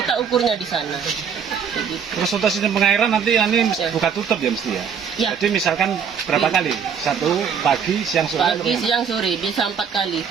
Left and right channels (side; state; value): left; quieter; 7.1 dB